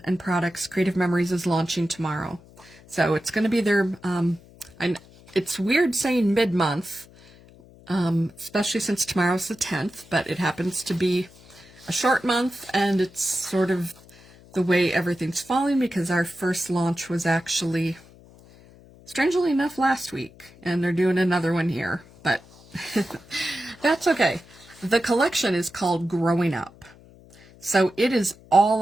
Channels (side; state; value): left; noise; hum, 24 dB below the sound